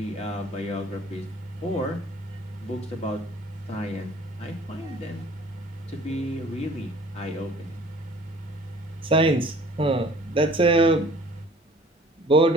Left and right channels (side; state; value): both; normal; correlation 0.52